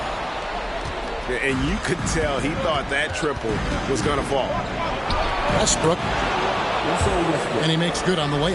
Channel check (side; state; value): both; identical; correlation 1.00